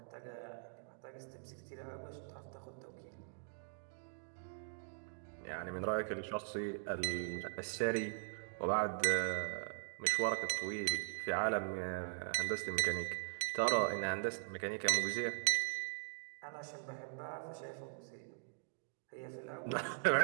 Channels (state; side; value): silent; left; digital silence